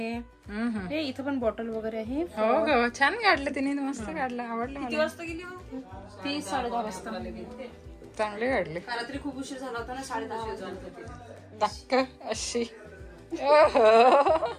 हे इथं पण बॉटल वगैरे आहे. हो हो, छान काढलं तिने, मस्त काढलं, आवडलं मला. किती वाजता गेली? 10:30 वाजता. चांगली काढली. रात्री खूप उशीर झाला होता ना, 10:30 टक्क अशी.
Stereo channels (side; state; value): both; identical; correlation 1.00